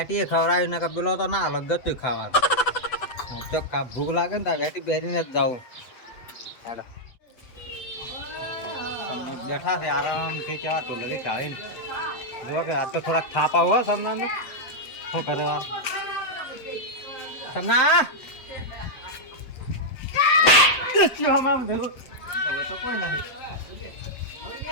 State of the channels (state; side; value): late; right; 8.0 ms